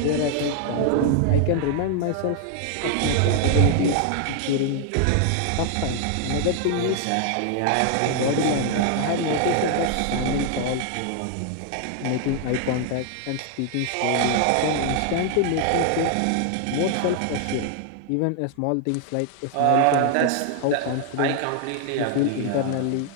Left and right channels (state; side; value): different; both; correlation 0.00